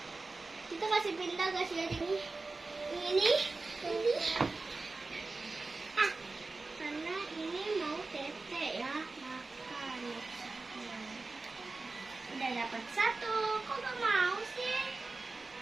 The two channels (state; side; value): quieter; left; 3.6 dB